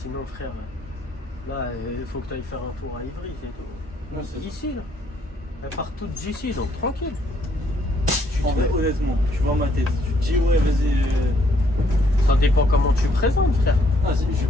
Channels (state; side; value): normal; both; correlation 0.69